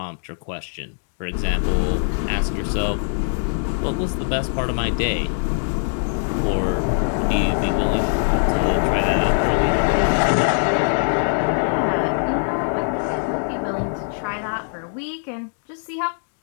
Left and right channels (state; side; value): silent; right; digital silence